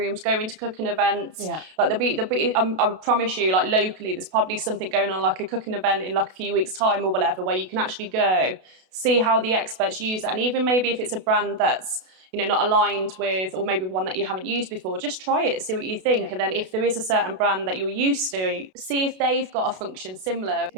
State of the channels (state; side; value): late; left; 32 ms